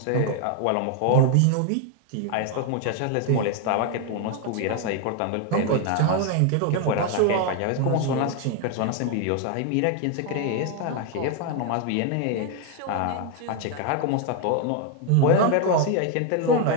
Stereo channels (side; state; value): both; different; correlation 0.01